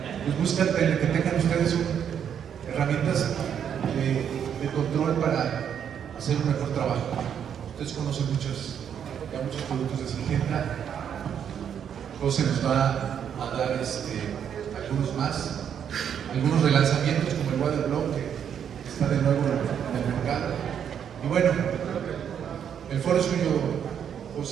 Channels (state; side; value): quieter; left; 8.5 dB